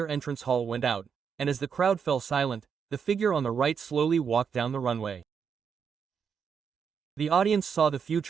entrance hall went out, and as the crowd fell silent, the figure on the right slowly walked down the runway. The audience saw the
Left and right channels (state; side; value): quieter; left; 6.7 dB